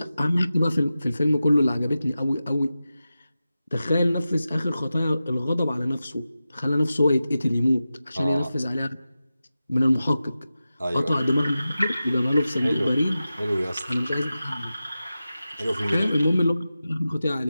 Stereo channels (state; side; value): inverted; both; correlation -0.93